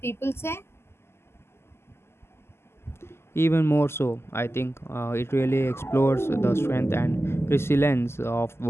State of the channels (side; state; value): right; late; 0.12 ms